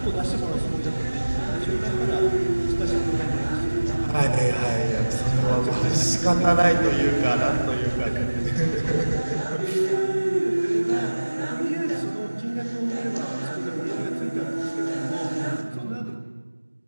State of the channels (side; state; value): both; inverted; correlation -1.00